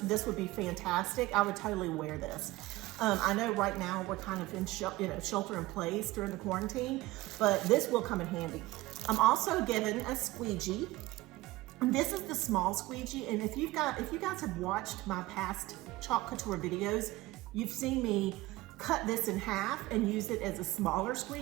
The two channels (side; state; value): left; quieter; 19.0 dB